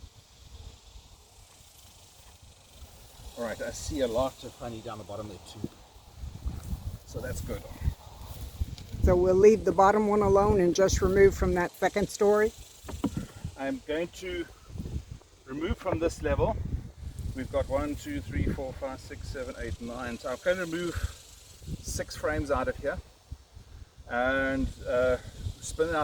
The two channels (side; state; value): both; identical; correlation 1.00